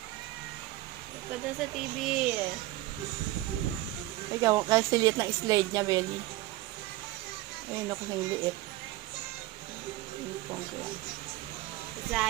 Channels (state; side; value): quieter; left; 17.0 dB